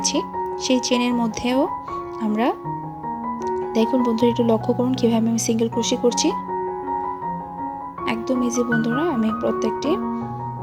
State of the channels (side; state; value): both; identical; correlation 1.00